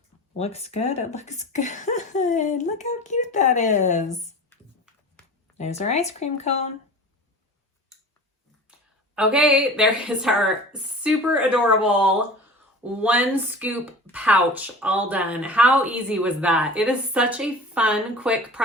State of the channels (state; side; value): normal; both; correlation 0.38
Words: looks good. It looks good. Look how cute that is. There's our ice cream cone. Okay, there is our super adorable 1 scoop pouch all done. How easy was that? It is such a fun, quick